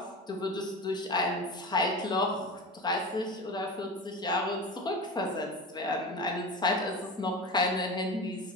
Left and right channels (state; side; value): normal; both; correlation 0.28